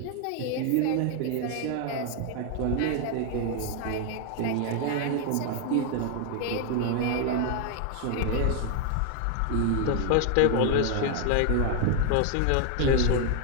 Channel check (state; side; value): different; both; correlation 0.00